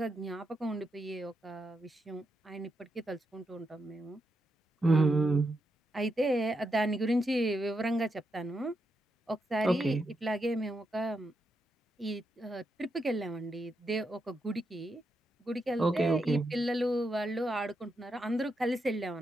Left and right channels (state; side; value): normal; both; correlation 0.84